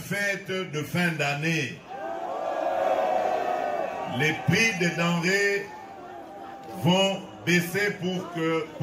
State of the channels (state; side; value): identical; both; correlation 1.00